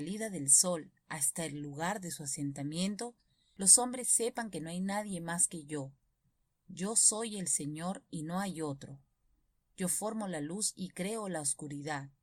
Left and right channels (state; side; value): identical; both; correlation 1.00